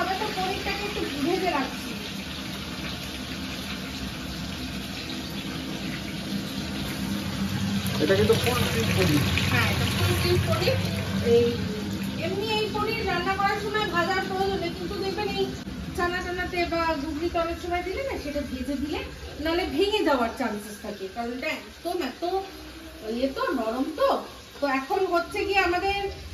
তো পনিরটাকে একটু ভেজে রাখছি। এটা কিন্তু ফুল স্টিক পনির। হ্যাঁ, এটা ফুল স্টিক পনির। এই এমনি এই পনির রান্না করার সময় ভাজার প্রয়োজন নেই, কিন্তু দেখবেন এই চানা টানাতে বা ঘুগনিতে অনেক সময় দিলে না, সেটা ভেজে দিলে নাহলে ভেঙে যাওয়ার চান্সেস থাকে, কারণ এটা একদম এত ইয়ে তো নরম। তো এখন হচ্ছে কি আমাদের,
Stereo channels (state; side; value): identical; both; correlation 1.00